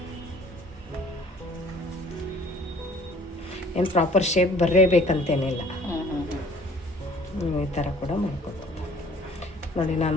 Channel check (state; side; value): normal; both; correlation 0.54